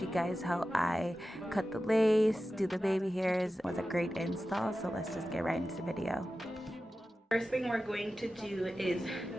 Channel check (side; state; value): both; normal; correlation 0.94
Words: guys how I cut the lace, do the baby hairs. It was a great install, so let's just get right into the video. First thing we're going to do is